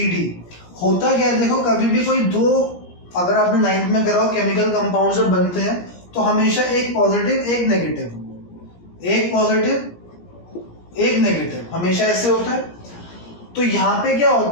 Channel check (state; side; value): late; right; 17 ms